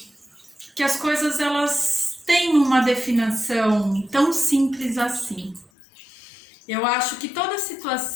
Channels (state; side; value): drops out; right; at 5.7 s